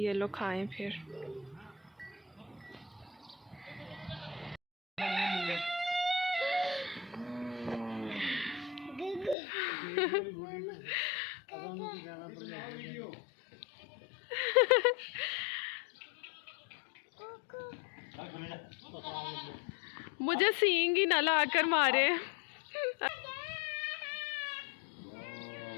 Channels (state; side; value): drops out; right; at 9.3 s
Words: लोग खाएं फिर। मुझे सींग ही ना लाकर मारे।